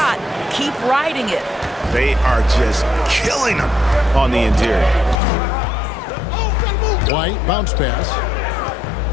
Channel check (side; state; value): right; drops out; at 5.2 s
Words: keep riding it. They are just killing him on the interior. White, bounce pass.